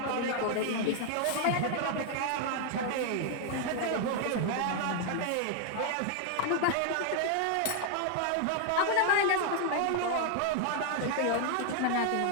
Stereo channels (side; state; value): both; different; correlation 0.00